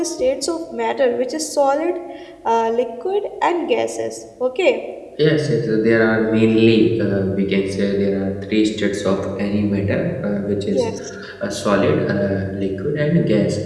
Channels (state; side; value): identical; both; correlation 1.00